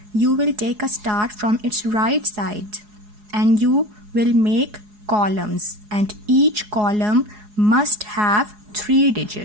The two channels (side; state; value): left; late; 4.8 ms